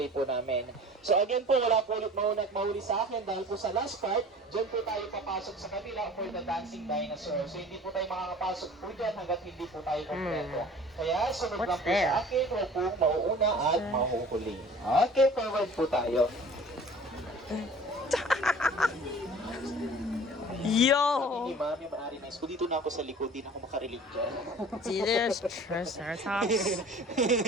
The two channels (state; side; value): normal; both; correlation 0.45